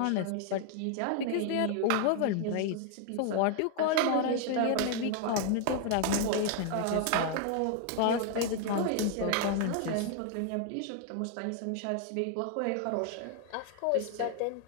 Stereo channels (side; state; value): both; different; correlation 0.00